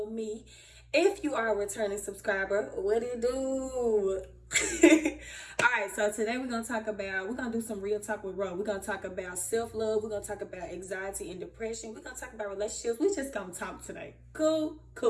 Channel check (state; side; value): identical; both; correlation 1.00